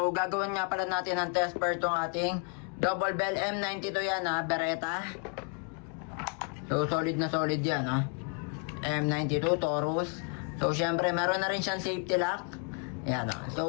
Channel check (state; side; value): quieter; right; 37.2 dB